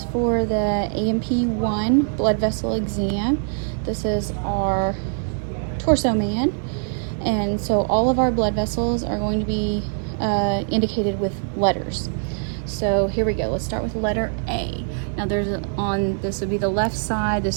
for the AMP1 blood vessel exam. This is our torso man. And so all of our blood vessels are going to be indicated with letters. So here we go. Let's start with letter A. Now this would be the left side,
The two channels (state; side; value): silent; left; digital silence